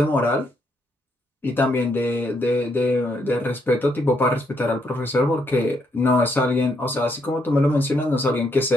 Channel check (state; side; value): normal; both; correlation 0.75